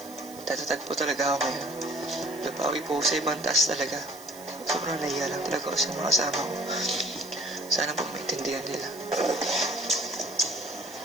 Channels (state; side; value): noise; right; hiss, 17 dB below the sound